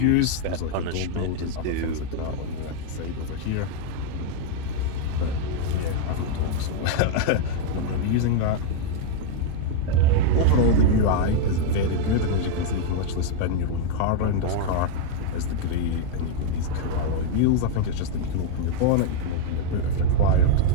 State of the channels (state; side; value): different; both; correlation -0.01